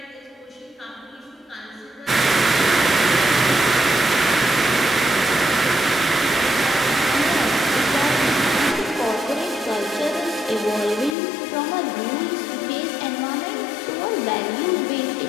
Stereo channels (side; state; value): right; drops out; at 11.2 s